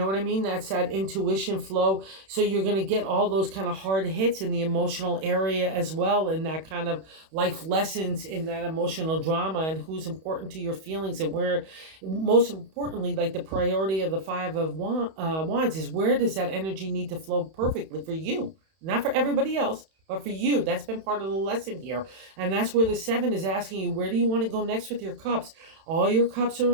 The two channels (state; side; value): late; left; 31 ms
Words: what I mean? That's that intuition flow. So you're going to get all those kind of hard hits in the emotional area as well, and that kind of life lessons in that emotional drama, and who's important to your feelings, and where, most importantly, like the priority of the Five of Wands is, where does that energy need to flow perfectly for you? Not for everybody else, but for you. That's been part of the lesson here. And that's where the seven is asking you, where do you want to go next with your cups? All your cups are